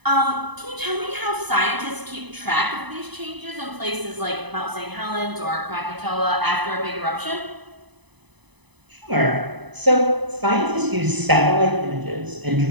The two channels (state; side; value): late; left; 1.0 ms